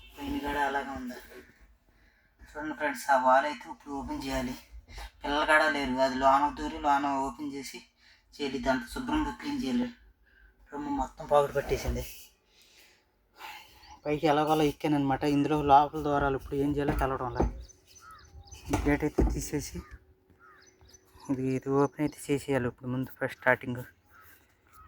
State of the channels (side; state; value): both; identical; correlation 1.00